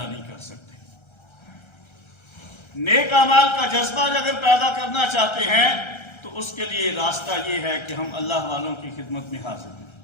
نہیں کر سکتے۔ نیک اعمال کا جذبہ اگر پیدا کرنا چاہتے ہیں تو اس کے لیے راستہ یہ ہے کہ ہم اللہ والوں کی خدمت میں حاضر ہیں۔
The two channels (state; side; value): late; right; 1.3 ms